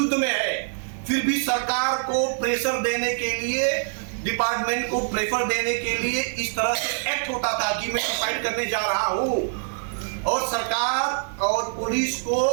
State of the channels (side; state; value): left; silent; digital silence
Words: में है, फिर भी सरकार को प्रेशर देने के लिए, डिपार्टमेंट को प्रेशर देने के लिए इस तरह से एक्ट होता था कि मैं सुसाइड करने जा रहा हूं। और सरकार और पुलिस को